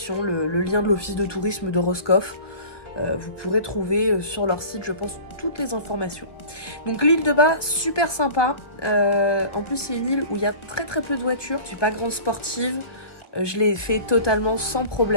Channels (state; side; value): late; right; 1.2 ms